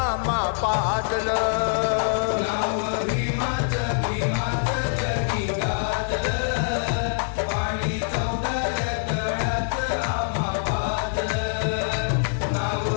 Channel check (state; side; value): silent; right; digital silence